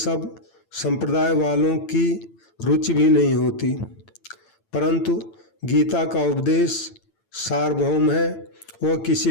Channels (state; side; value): late; right; 8.9 ms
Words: संप्रदाय वालों की रुचि भी नहीं होती। परंतु गीता का उपदेश सार्वभौम है, वह किसी